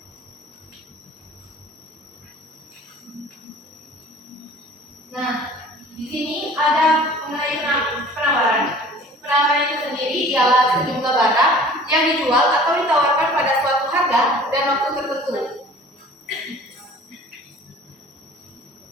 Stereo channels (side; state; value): both; normal; correlation 0.47